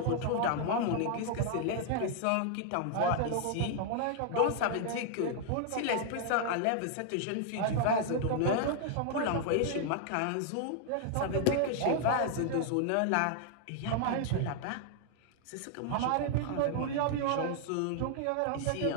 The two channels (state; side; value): different; both; correlation 0.00